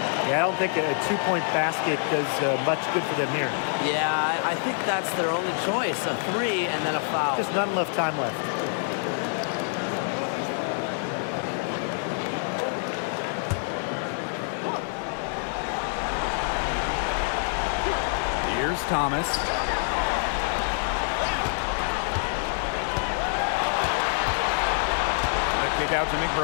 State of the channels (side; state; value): right; silent; 61 dB below the other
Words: Yeah, I don't think a two-point basket does much good for them here. Yeah, I think that's their only choice, a three and then a foul. Just not enough time left. Here's Thomas. The kick out to